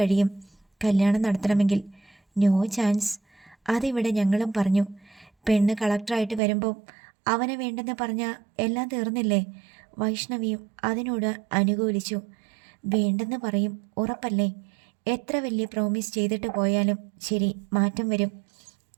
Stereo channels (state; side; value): drops out; left; at 6.4 s